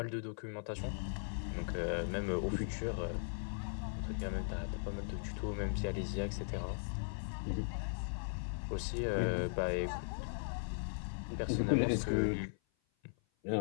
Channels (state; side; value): silent; right; 52 dB below the other